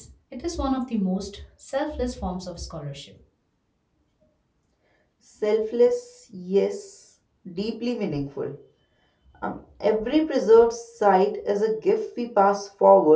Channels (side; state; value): both; identical; correlation 1.00